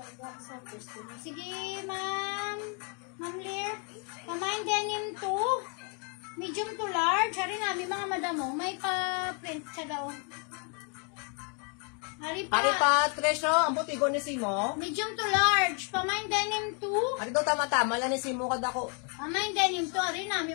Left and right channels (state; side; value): quieter; right; 38.4 dB